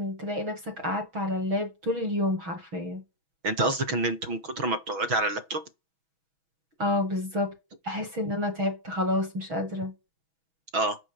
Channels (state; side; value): late; left; 6.2 ms